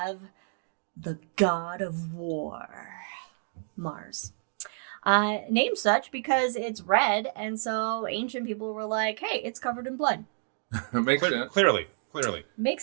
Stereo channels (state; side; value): silent; left; digital silence